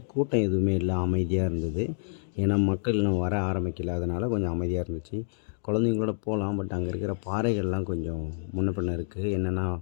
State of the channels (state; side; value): silent; right; digital silence